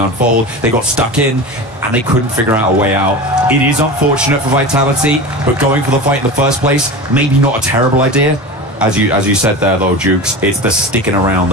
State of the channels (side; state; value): both; normal; correlation 0.29